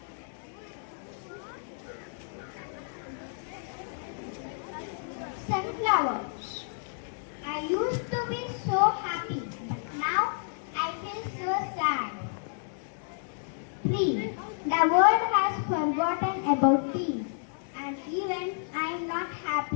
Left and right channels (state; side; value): silent; right; digital silence